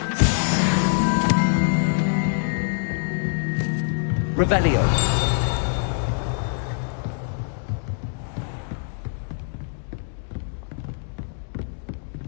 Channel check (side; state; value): right; silent; digital silence